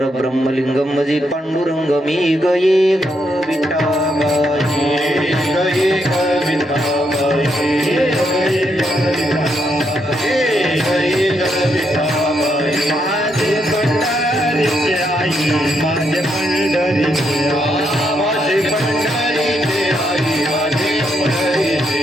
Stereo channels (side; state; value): both; normal; correlation 0.78